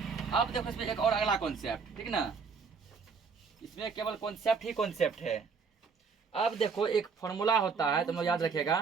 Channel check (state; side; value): quieter; left; 5.4 dB